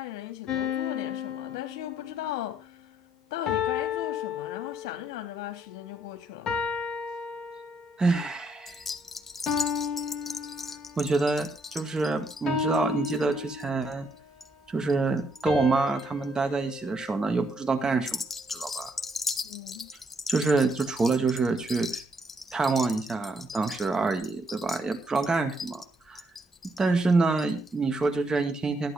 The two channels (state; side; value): normal; both; correlation 0.72